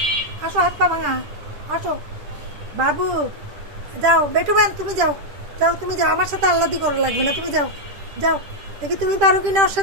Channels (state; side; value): late; left; 10 ms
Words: আসো, হাত পা ভাঙা, আসো। বাবু যাও, বেটুম্যান তুমি যাও, যাও তুমি যাও, আমার সাথে আল্লাদি করা লাগবে না, তুমি যাও যাও, দেখি তুমি পারো কিনা ওর